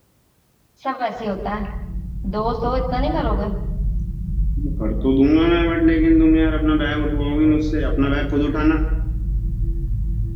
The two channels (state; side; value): identical; both; correlation 1.00